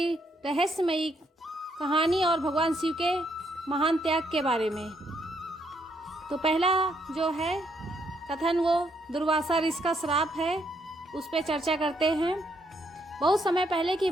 रहस्यमयी कहानी और भगवान शिव के महान त्याग के बारे में। तो पहला जो है कथन वो दुर्वासा ऋषि का श्राप है, उस पर चर्चा करते हैं। बहुत समय पहले की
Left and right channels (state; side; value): normal; both; correlation 0.74